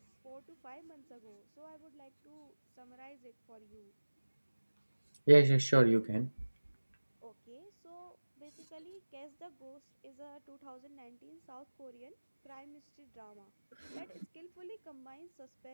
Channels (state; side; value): inverted; both; correlation -1.00